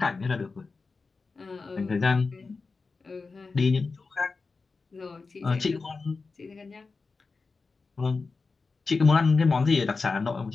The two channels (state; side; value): quieter; right; 4.2 dB